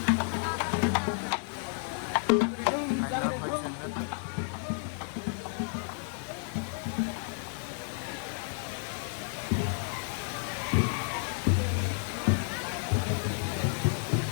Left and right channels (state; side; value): silent; right; 56 dB below the other